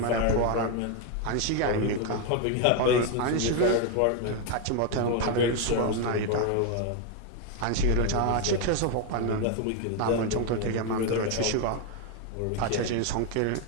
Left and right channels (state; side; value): different; both; correlation 0.01